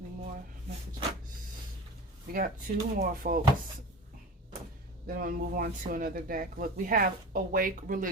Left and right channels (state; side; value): normal; both; correlation 0.33